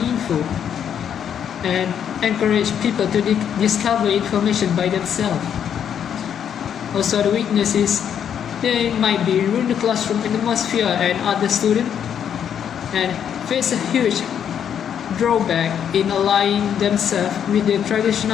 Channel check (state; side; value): quieter; right; 8.7 dB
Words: and encourage people to discover information by themselves. Also, the weakness is they might be ruin the classroom atmosphere and other students and face a huge drawback in aligning themselves with the traditional